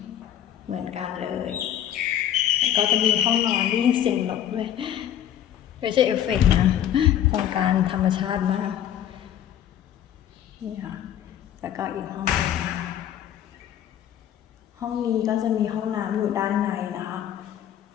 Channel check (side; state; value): right; quieter; 10.6 dB